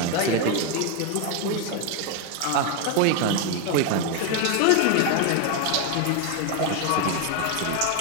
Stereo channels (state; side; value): different; both; correlation 0.01